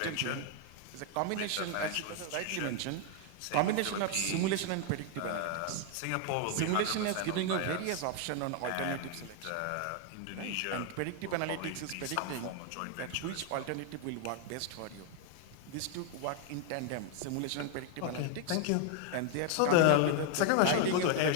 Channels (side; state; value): both; different; correlation 0.00